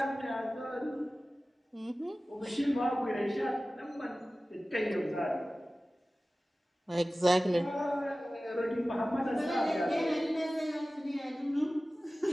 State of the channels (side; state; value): both; normal; correlation 0.97